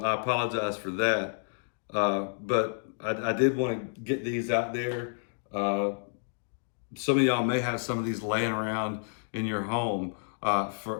I apologize for that. But I did want to get these out there. Some of y'all may have some of these laying around in your home.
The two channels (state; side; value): silent; right; digital silence